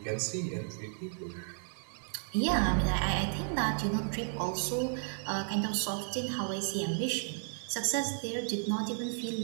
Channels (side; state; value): left; silent; digital silence